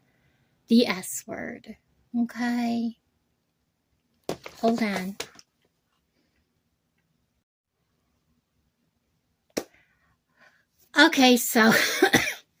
the S word. Okay. Hold on. Okay, so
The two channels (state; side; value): identical; both; correlation 1.00